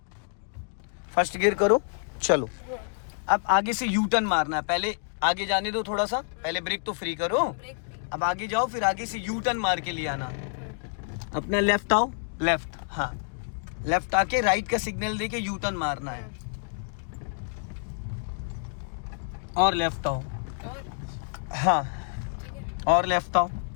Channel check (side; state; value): right; silent; digital silence